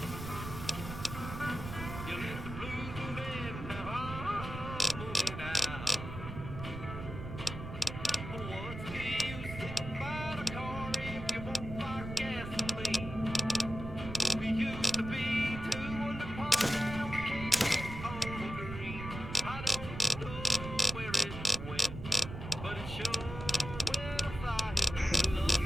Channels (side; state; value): right; noise; rumble, 8 dB below the sound